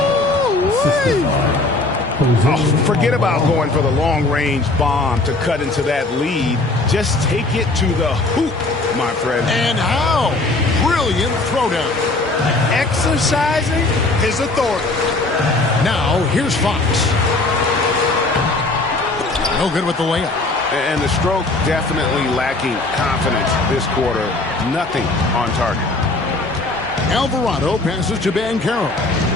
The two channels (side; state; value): right; quieter; 3.1 dB